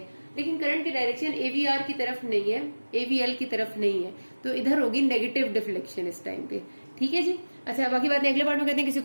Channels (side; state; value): both; inverted; correlation -1.00